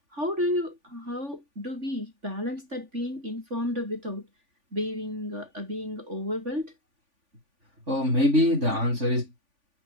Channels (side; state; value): left; late; 3.5 ms